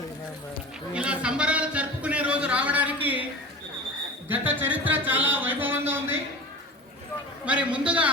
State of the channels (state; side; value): normal; both; correlation 0.34